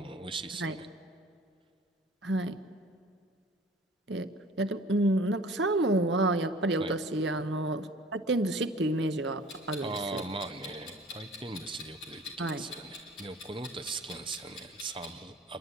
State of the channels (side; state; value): both; normal; correlation 0.47